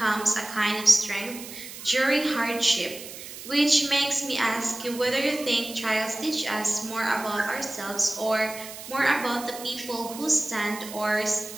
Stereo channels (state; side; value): noise; right; hiss, 12 dB below the sound